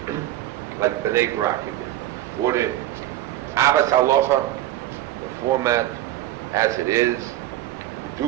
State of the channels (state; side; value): quieter; left; 13.8 dB